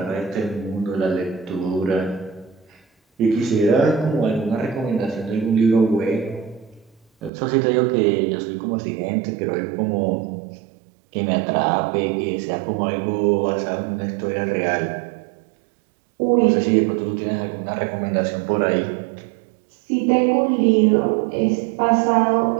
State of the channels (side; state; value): left; drops out; at 7.3 s